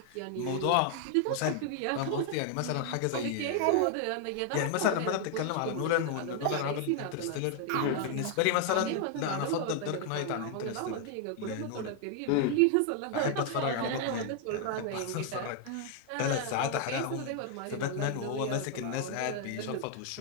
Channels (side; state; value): both; different; correlation 0.00